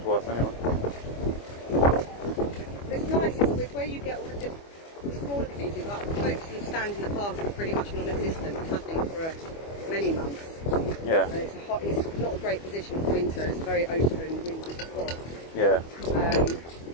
anyway. It's nice, it's where you get all the smaller communities, like the folks who stand in the park are pretty much non-existent, nothing for many months. Yeah. And it's not a great position for winter, it's a very open, windy spot. Yeah.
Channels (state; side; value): late; right; 25 ms